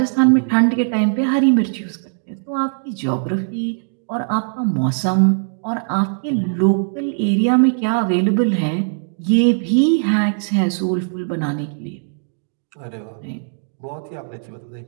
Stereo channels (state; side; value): silent; left; digital silence